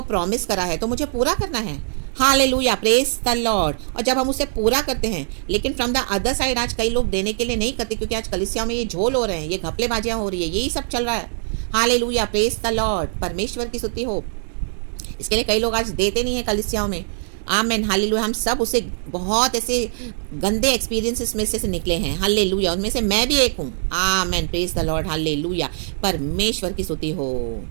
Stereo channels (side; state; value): left; silent; digital silence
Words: प्रॉमिस करा है तो मुझे पूरा करना है। Hallelujah, praise the Lord. और जब हम उसे पूरा करते हैं, लेकिन फ्रॉम द अदर साइड आज कई लोग देने के लिए नहीं करते, क्योंकि आज कलीसियाओं में ये झोल हो रहे हैं, ये घपलेबाजियां हो रही है, यही सब चल रहा है। हालेलुया, प्रेज द लॉर्ड, परमेश्वर की स्तुति हो। इसके लिए कई लोग आज देते नहीं है कलीसियाओं में। आमेन, हालेलुया। हम सब उसे बहुत ऐसे गंदे एक्सपीरियंसेस में से निकले हैं, हालेलुया। उनमें से मैं भी एक हूँ। आमेन, प्रेज द लॉर्ड, हालेलुया, परमेश्वर की स्तुति हो।